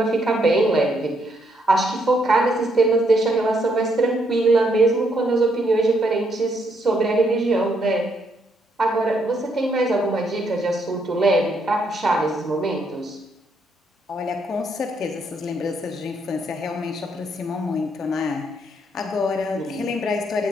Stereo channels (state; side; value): normal; both; correlation 0.74